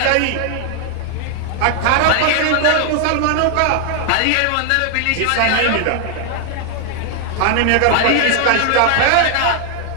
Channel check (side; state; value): both; different; correlation 0.00